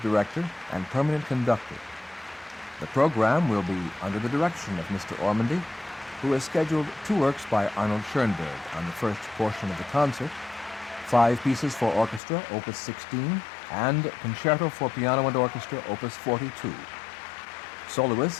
director and permanent conductor. The program will be under the direction of Mr. Ormandy, who has scheduled 2 works by Arnold Schoenberg on the first portion of the concert, 5 pieces for orchestra, Opus 16, and Concerto for Piano and Orchestra, Opus 42. Soloist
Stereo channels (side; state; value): right; drops out; at 12.2 s